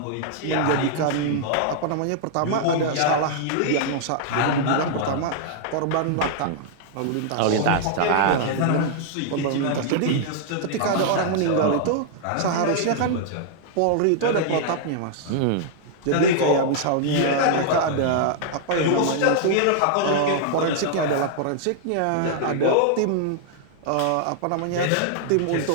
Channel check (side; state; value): both; different; correlation -0.01